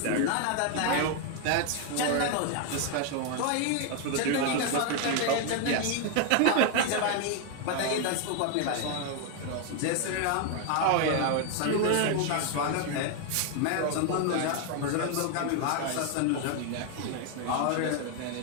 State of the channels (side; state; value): both; different; correlation 0.01